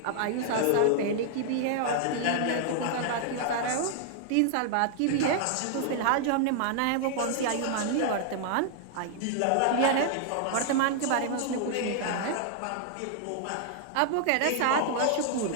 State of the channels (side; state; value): both; different; correlation 0.00